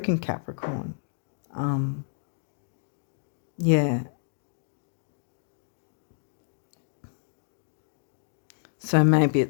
Capricorn. Yeah. So maybe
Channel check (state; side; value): silent; right; digital silence